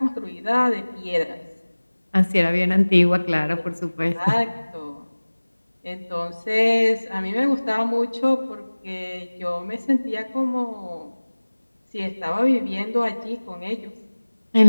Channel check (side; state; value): both; inverted; correlation -1.00